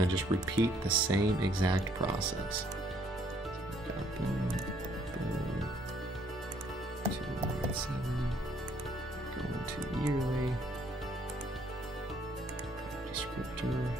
to just repeat the same exact process. So boom, boom, 297, going to yearly, descriptor,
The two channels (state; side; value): normal; both; correlation 0.66